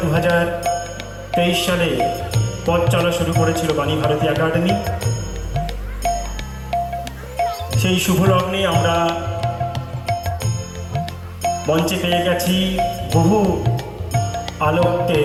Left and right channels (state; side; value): identical; both; correlation 1.00